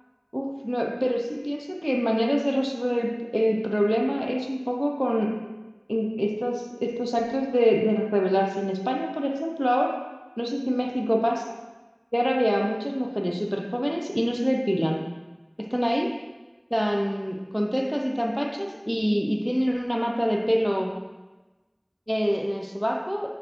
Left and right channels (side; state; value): both; identical; correlation 1.00